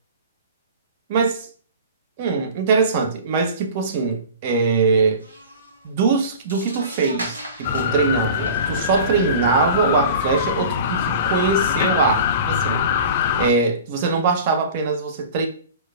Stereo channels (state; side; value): inverted; both; correlation -0.38